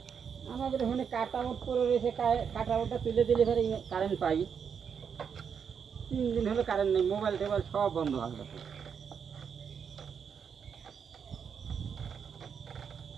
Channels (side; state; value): left; quieter; 7.0 dB